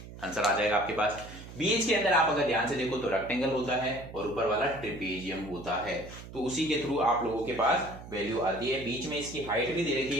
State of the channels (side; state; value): right; noise; hum, 14 dB below the sound